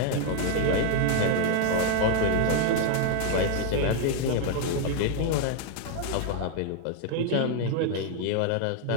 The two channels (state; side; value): different; both; correlation 0.00